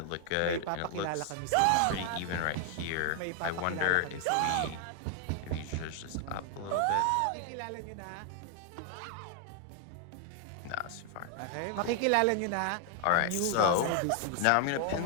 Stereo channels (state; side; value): different; both; correlation 0.00